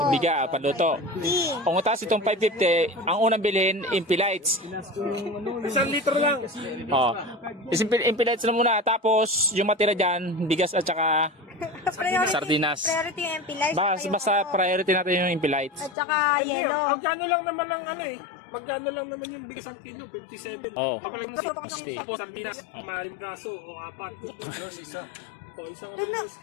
Biga, panluto. Kung utas itong 550, ang unang bilhin, Impilites. 1 litro lang. Oh. Impilites na muna. Tapos, yung matira dyan, bigas at saka sardinas. Priority yung MP Life. Basta priority natin yung Impilites. At saka yellow. Magkano lang naman ang ano eh. Magkano lang naman yung bigas ang kilo? 57. Oo. Papalag na Masti. tapos sardinas. Maring braso o 4. isa. O isang Doon na.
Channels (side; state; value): right; drops out; at 16.0 s